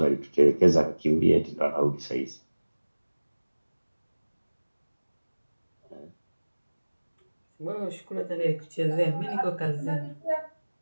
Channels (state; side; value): inverted; both; correlation -1.00